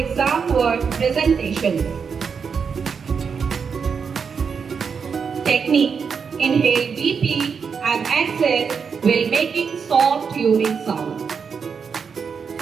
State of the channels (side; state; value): left; quieter; 6.1 dB